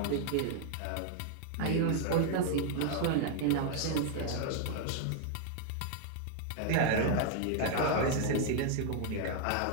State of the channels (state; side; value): different; both; correlation 0.00